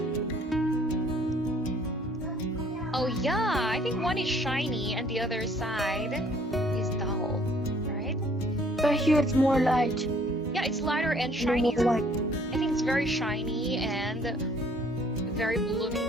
Oh yeah, I think one is shiny and the other side is dull, right? But here it's more light. Yeah, it's lighter and shiny. More white. I think it's very shiny and very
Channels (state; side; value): normal; both; correlation 0.60